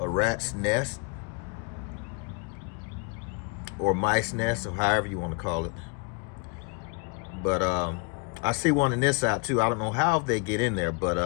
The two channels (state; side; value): quieter; right; 33.7 dB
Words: nest or mice nest, or however you want to call it. But I see one in this side too. I don't know how they get in there,